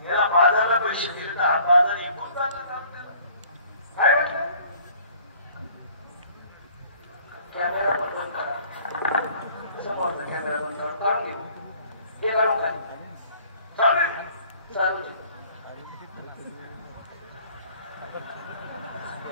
याला बाजारला पैसे दिले तर हा बाजार इकून जातो काय म्हटलं कॅमेरा पण बंद करा समोरचा कॅमेरा बंद काढून घेऊ हे काढून काय चालू चालू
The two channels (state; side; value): inverted; both; correlation -0.55